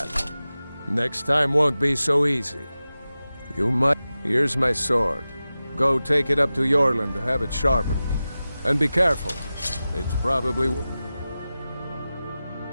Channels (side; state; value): both; inverted; correlation -0.95